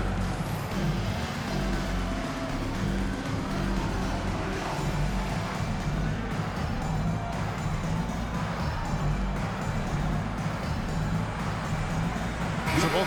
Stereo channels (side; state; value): both; identical; correlation 1.00